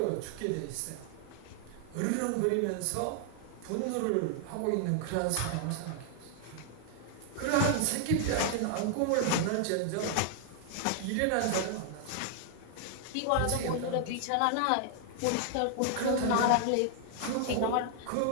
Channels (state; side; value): different; both; correlation 0.00